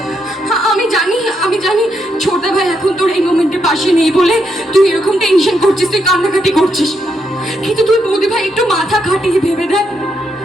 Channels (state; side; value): normal; both; correlation 0.79